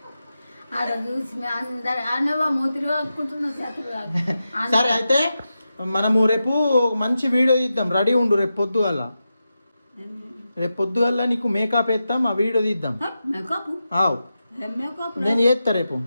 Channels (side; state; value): both; inverted; correlation -0.90